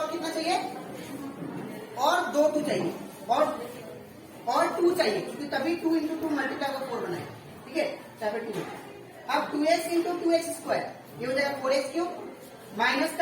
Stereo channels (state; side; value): identical; both; correlation 1.00